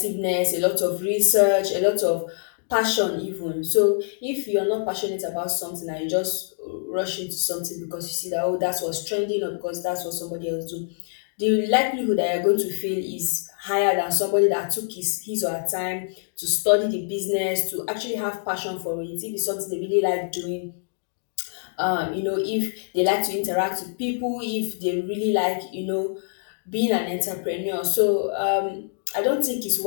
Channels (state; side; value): silent; right; digital silence